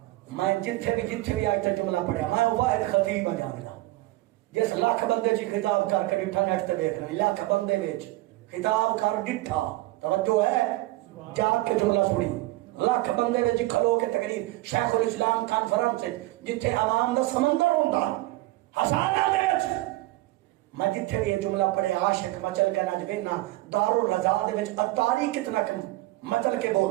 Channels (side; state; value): left; quieter; 18.7 dB